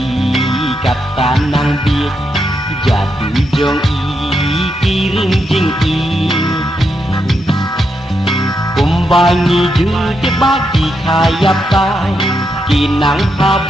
kata nang biết giả tự dòng y kirim jing y kumbangi ju te ba ki khayap tai ki nang ha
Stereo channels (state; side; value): normal; both; correlation 0.82